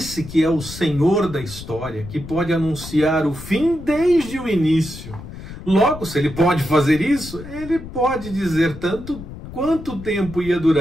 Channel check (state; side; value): noise; left; rumble, 13 dB below the sound